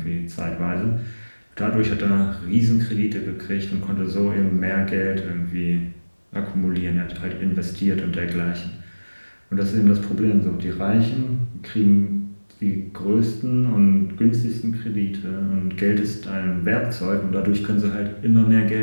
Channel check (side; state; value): both; inverted; correlation -1.00